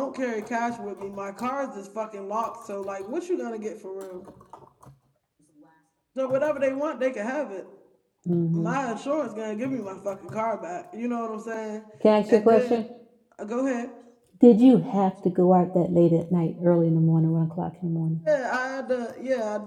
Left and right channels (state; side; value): identical; both; correlation 1.00